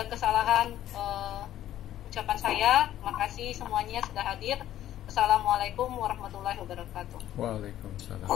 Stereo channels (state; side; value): quieter; right; 12.5 dB